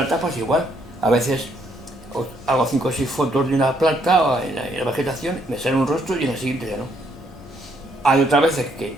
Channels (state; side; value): normal; both; correlation 0.71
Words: pues igual. A veces hago 5 o 6 fotos de una planta o en la vegetación, me sale un rostro y en la siguiente ya no. Hay otras veces que